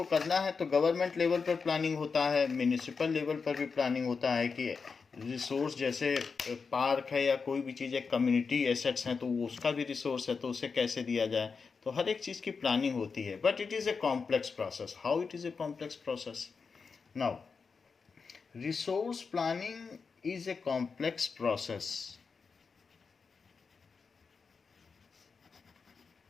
करना है, तो गवर्नमेंट लेवल पर प्लानिंग होता है, म्यूनिसिपल लेवल पर भी प्लानिंग होता है कि रिसोर्स जैसे पार्क है या कोई भी चीज़ है, कम्युनिटी एसेट्स हैं, तो वो उसका भी रिसोर्स है, तो उसे कैसे दिया जाए, तो हर एक चीज़ की प्लानिंग होती है। But it is a complex process. How it is a complex process? Now resource planning is a complex process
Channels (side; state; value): right; quieter; 5.1 dB